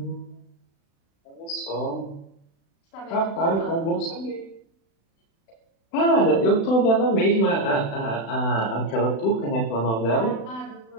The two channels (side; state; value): right; late; 36 ms